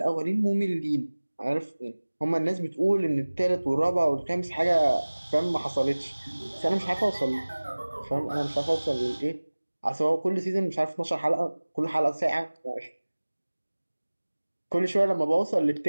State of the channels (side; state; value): both; inverted; correlation -1.00